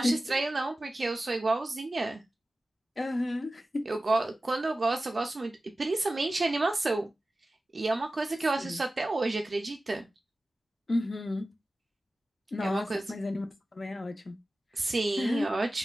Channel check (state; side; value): normal; both; correlation 0.95